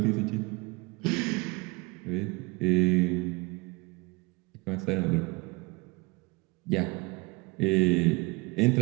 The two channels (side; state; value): left; quieter; 25.8 dB